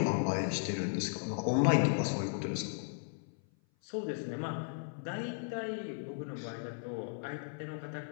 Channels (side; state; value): right; silent; 54 dB below the other